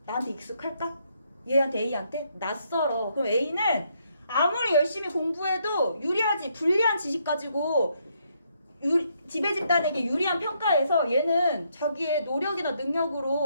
나한테 익숙할까? 얘한테 A한테? 낯설어. 그럼 A는 아무리 열심히 공부해도 유리하지 불리한 지식 가지고 지배 집단에게 유리한 평가에서 얘는 자기의 노력이나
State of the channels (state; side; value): inverted; both; correlation -0.74